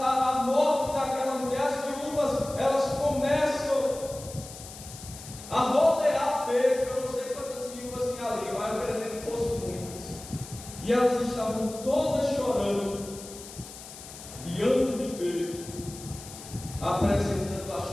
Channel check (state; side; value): noise; left; hiss, 14 dB below the sound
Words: morte daquela mulher. As viúvas, elas começam a rodear Pedro. Eu não sei quantas viúvas tinha ali, mas eu acredito que fossem muitas. E elas estavam todas chorando diante de Pedro, apresentando